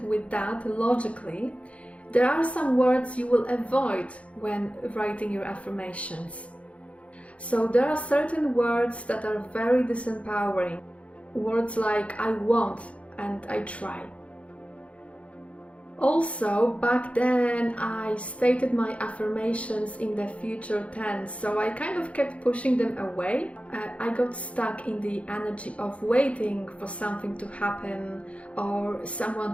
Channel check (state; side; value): late; right; 0.063 ms